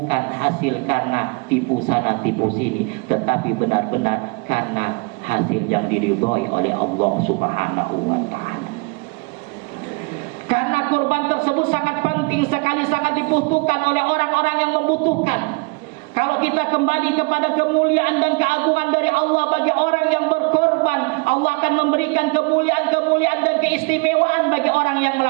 hasil karena tipu sana tipu sini, tetapi benar-benar karena hasil yang diridhoi oleh Allah Subhanahu wa taala. Karena kurban tersebut sangat penting sekali, sangat dibutuhkan oleh orang-orang yang membutuhkan. Kalau kita kembali kepada kemuliaan dan keagungan dari Allah bagi orang yang berkorban, Allah akan memberikan kemuliaan-kemuliaan dan keistimewaan bagi orang yang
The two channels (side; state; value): left; quieter; 30.5 dB